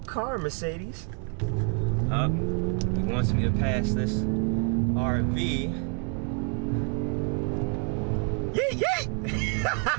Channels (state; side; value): quieter; left; 39.2 dB